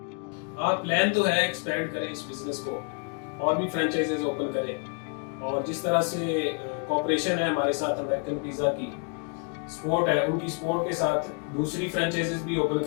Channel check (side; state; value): right; quieter; 39.2 dB